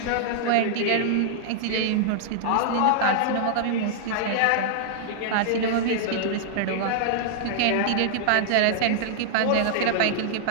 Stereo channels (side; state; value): both; different; correlation -0.01